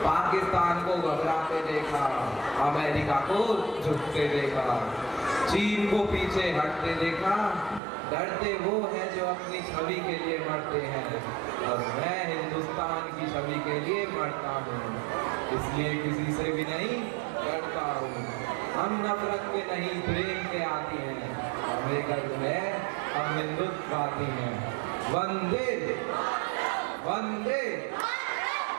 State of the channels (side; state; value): left; drops out; at 7.8 s